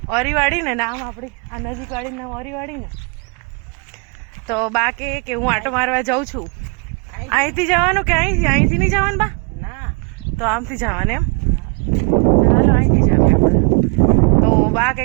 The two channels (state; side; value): quieter; left; 33.5 dB